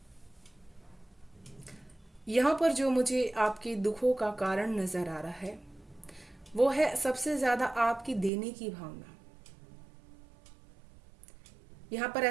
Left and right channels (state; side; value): drops out; left; at 8.3 s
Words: यहाँ पर जो मुझे आपके दुखों का कारण नज़र आ रहा है वो है सबसे ज़्यादा आपकी देने की भावना। यहाँ पर